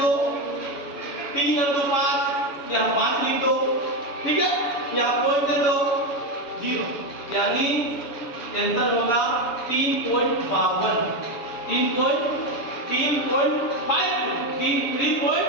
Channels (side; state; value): right; late; 7.0 ms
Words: 3 और 2 5, यहाँ 5 लिख दो, ठीक है? यहाँ पॉइंट दे दो 0, यानी आंसर होगा